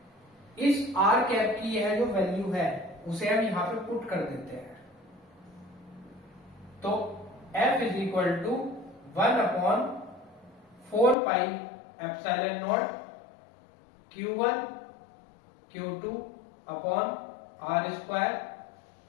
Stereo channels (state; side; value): drops out; right; at 11.2 s